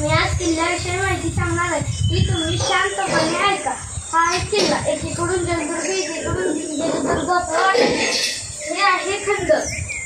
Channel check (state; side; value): identical; both; correlation 1.00